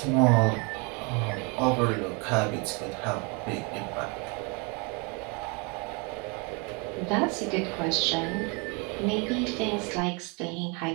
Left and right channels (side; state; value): left; quieter; 32.0 dB